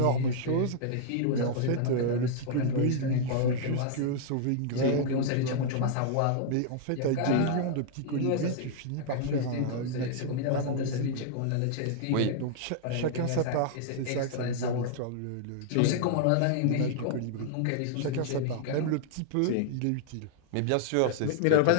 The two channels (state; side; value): different; both; correlation -0.01